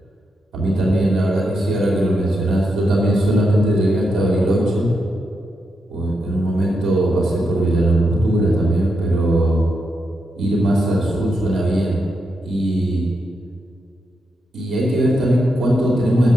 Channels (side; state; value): both; normal; correlation 0.84